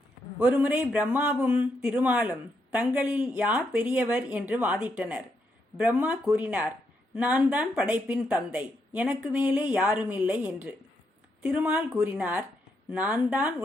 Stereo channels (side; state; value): both; normal; correlation 0.79